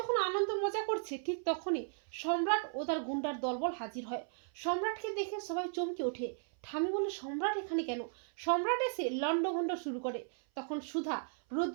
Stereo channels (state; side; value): silent; left; 54 dB below the other